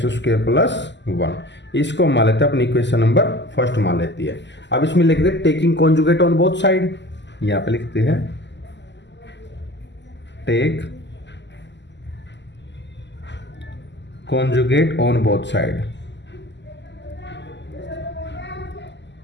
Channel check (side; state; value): right; late; 0.51 ms